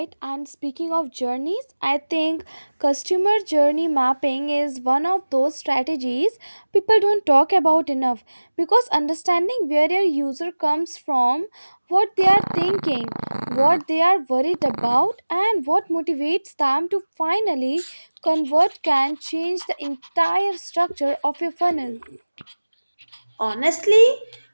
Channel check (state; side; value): inverted; both; correlation -1.00